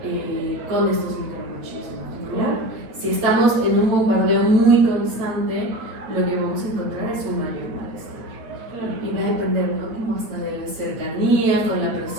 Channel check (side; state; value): left; late; 8.8 ms